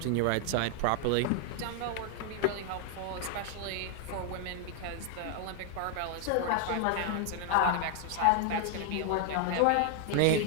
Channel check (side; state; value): both; different; correlation 0.00